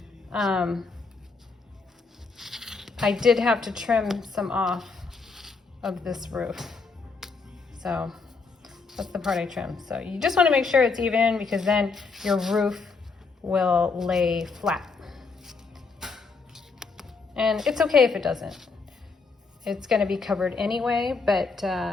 I did have to trim some off of this roof, so that's the part I trimmed. So you just want to make sure it's even, because then your roof will lay flat. And it's okay if it doesn't. It's going to be covered anyway, but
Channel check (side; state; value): right; quieter; 4.5 dB